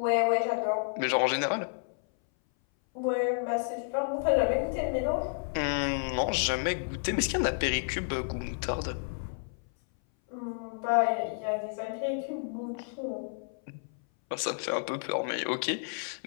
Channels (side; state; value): right; silent; 57 dB below the other